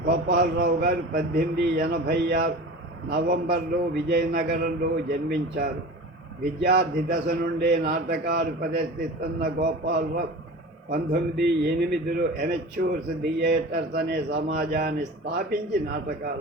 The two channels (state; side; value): normal; both; correlation 0.35